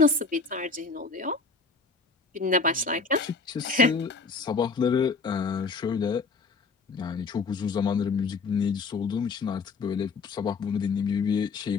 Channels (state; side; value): quieter; right; 4.4 dB